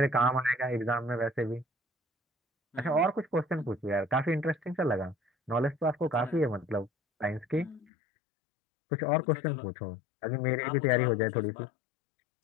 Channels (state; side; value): drops out; right; at 7.9 s